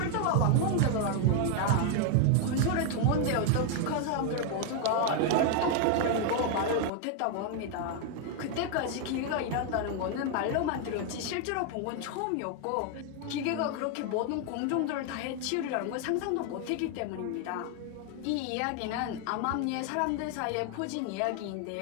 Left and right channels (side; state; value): both; different; correlation 0.00